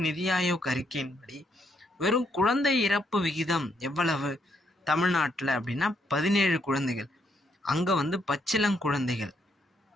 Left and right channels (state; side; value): normal; both; correlation 0.75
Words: நிதி ஆயோக் அறிக்கையின்படி வெறும் குழந்தை இறப்பு விகிதம் எவ்வளவு தமிழ்நாட்டில் அப்படின்னா 17 குழந்தைகள். அங்கே பச்சிளங்குழந்தைகள்.